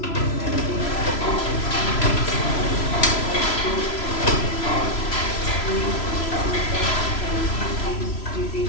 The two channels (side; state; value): right; late; 3.0 ms